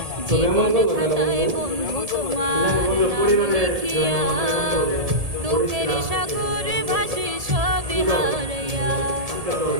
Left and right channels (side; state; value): left; late; 1.7 ms